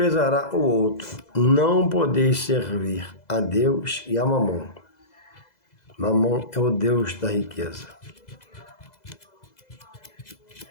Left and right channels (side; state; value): right; late; 2.0 ms